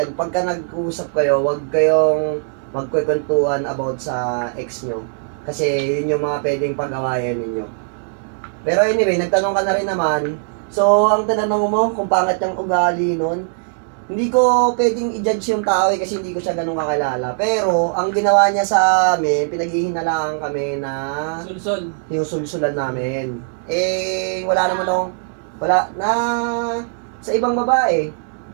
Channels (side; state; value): left; silent; 66 dB below the other